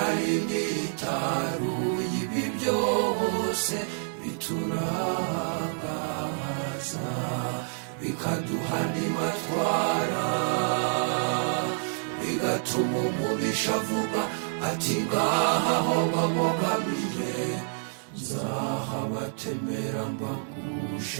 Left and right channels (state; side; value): silent; left; 59 dB below the other